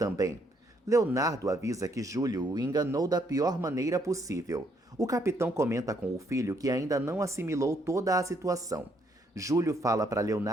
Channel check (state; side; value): normal; both; correlation 0.71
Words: Leonardo avisa que Júlio o enganou da pior maneira possível. O capitão comenta com o filho que ainda não assimilou toda a situação. Júlio fala para